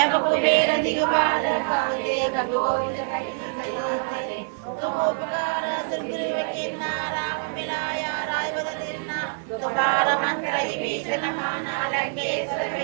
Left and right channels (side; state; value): left; silent; digital silence